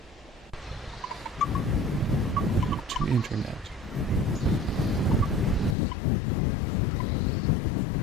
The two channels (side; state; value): right; drops out; at 5.8 s